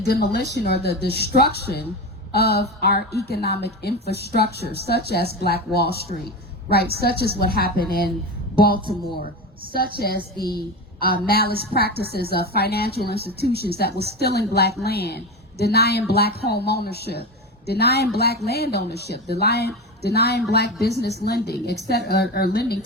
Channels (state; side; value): normal; both; correlation 0.21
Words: or the destruction of our economic infrastructure, such as Black Wall Street, right? Such as what happened in Baltimore, such as the malice practices of financial institutions that was stealing Black land, denying Black home ownership, denying Black land ownership, denying Black business lending, etc., or lending